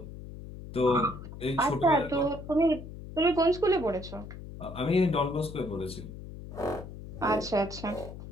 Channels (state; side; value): noise; left; hum, 12 dB below the sound